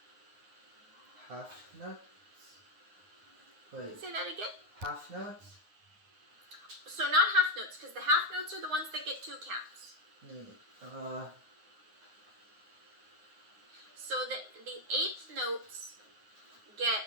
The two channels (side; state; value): left; late; 9.6 ms